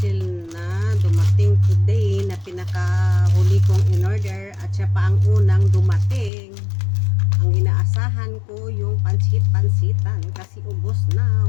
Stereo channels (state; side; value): drops out; right; at 6.3 s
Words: na dumating today na pinakahuli kong in order at siya pa ang unang dumating. Ang inaasahan ko yung pansit-pansitan kasi ubos